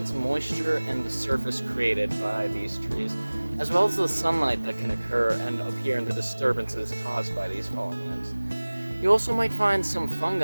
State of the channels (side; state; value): both; inverted; correlation -1.00